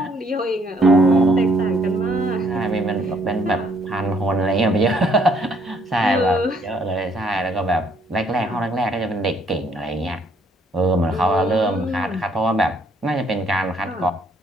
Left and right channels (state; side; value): normal; both; correlation 0.66